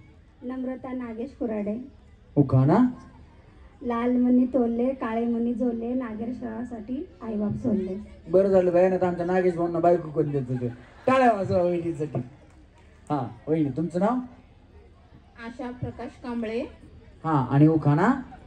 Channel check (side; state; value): both; identical; correlation 1.00